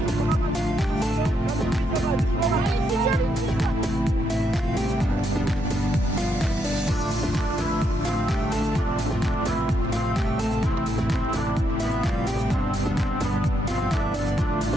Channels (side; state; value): both; normal; correlation 0.79